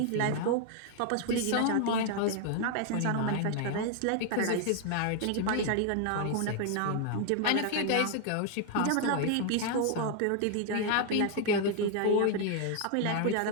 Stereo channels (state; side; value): different; both; correlation 0.00